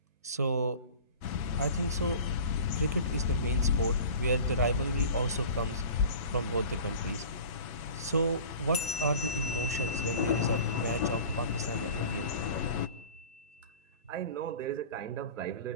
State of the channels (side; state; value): both; inverted; correlation -0.40